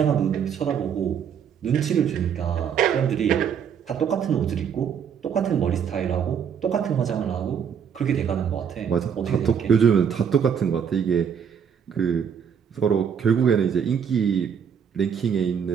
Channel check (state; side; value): quieter; left; 7.6 dB